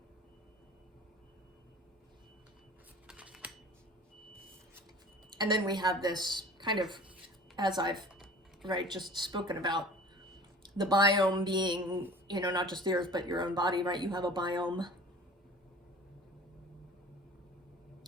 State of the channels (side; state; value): both; normal; correlation 0.43